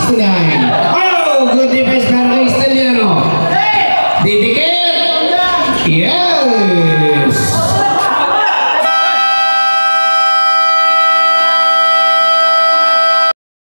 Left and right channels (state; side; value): inverted; both; correlation -1.00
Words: Oh, good defense para kay Steliano. Didikit. Yes.